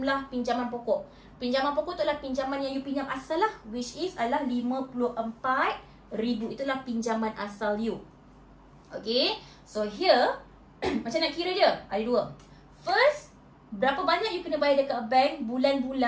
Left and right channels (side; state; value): both; identical; correlation 1.00